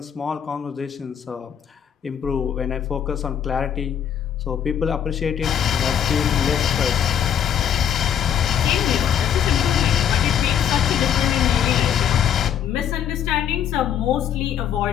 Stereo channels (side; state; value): right; quieter; 9.0 dB